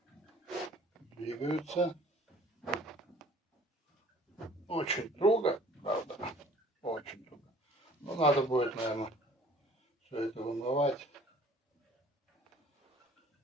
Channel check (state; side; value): normal; both; correlation 0.53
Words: двигаются. Очень туго, правда, очень туго. Но надо будет, наверное, все это вымывать.